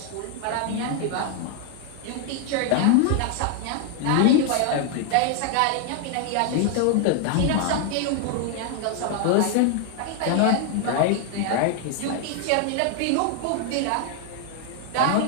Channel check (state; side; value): different; both; correlation 0.00